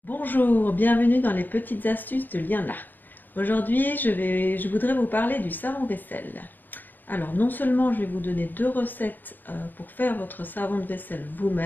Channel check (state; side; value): late; right; 0.088 ms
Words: Bonjour, bienvenue dans les petites astuces de Liana. Aujourd'hui, je voudrais vous parler du savon vaisselle. Alors, non seulement je vais vous donner deux recettes pour faire votre savon de vaisselle